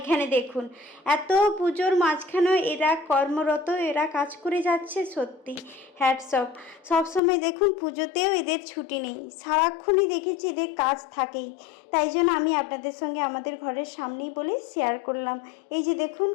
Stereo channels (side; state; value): right; drops out; at 7.2 s